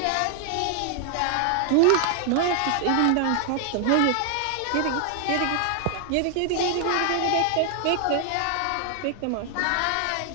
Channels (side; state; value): both; different; correlation 0.00